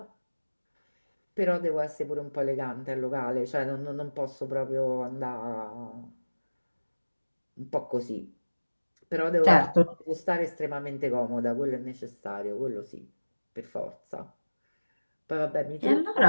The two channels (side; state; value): both; inverted; correlation -1.00